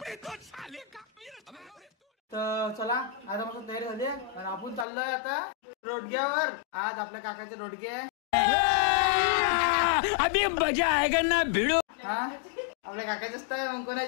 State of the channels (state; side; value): drops out; right; at 4.9 s